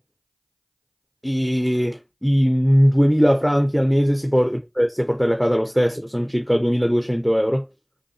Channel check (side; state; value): both; identical; correlation 1.00